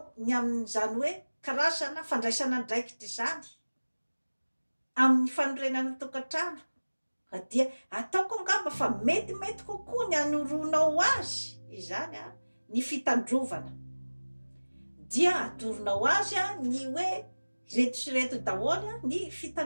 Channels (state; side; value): inverted; both; correlation -1.00